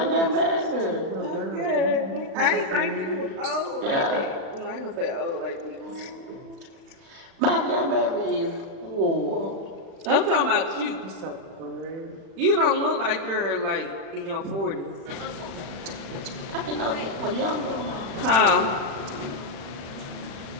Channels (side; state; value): left; late; 36 ms